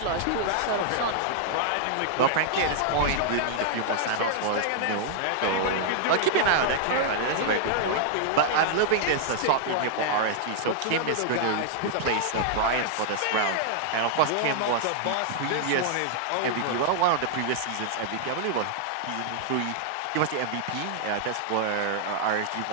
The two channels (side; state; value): both; different; correlation -0.01